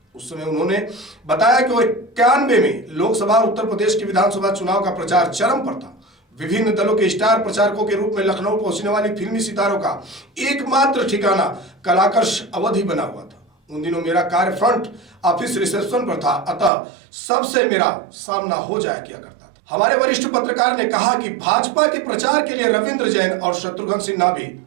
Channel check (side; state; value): left; drops out; at 16.7 s